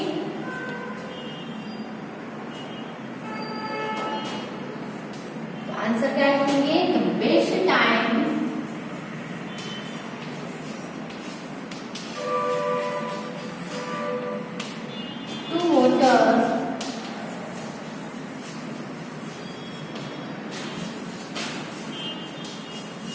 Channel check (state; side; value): identical; both; correlation 1.00